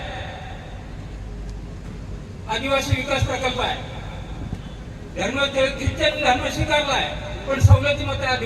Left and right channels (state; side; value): identical; both; correlation 1.00